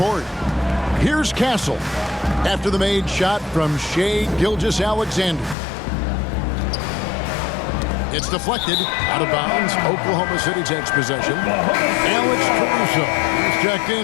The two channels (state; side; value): drops out; right; at 5.6 s